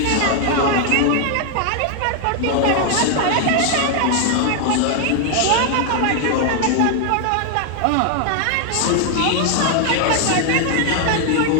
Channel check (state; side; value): different; both; correlation 0.00